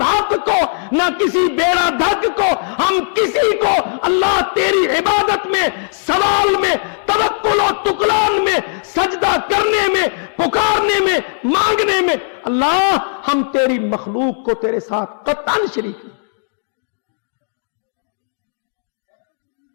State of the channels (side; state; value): right; silent; digital silence